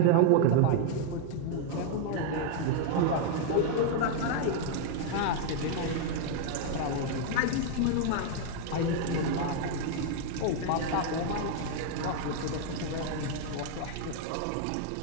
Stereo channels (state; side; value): different; both; correlation 0.00